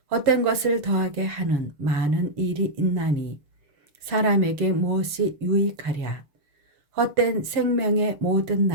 헛된 것을 더하게 하는 많은 일이 있나니 사람에게 무엇이 유익하랴. 헛된 생명의 모든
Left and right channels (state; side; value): late; left; 6.8 ms